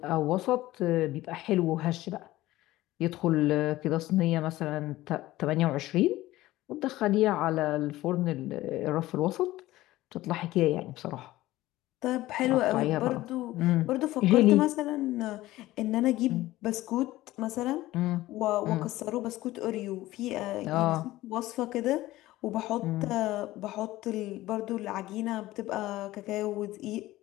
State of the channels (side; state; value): right; quieter; 16.8 dB